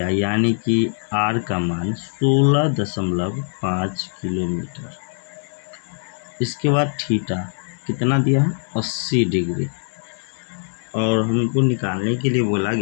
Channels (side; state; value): right; silent; 64 dB below the other